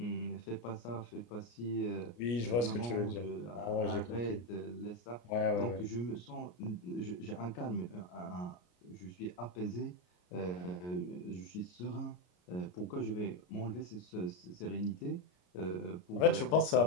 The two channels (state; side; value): late; right; 33 ms